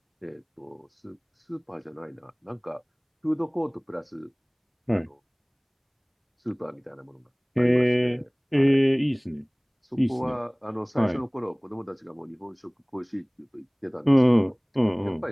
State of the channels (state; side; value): identical; both; correlation 1.00